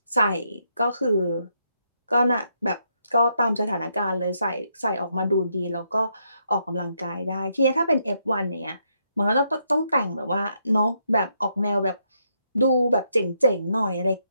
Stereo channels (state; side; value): inverted; both; correlation -0.77